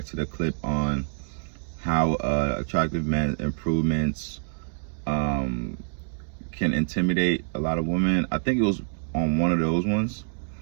to the clip on how attractive men improvements can intimidate a lot of women, I think it was on one of those ones.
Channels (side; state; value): left; silent; digital silence